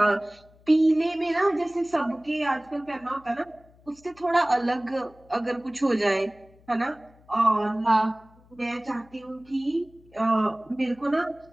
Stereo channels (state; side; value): noise; left; hum, 28 dB below the sound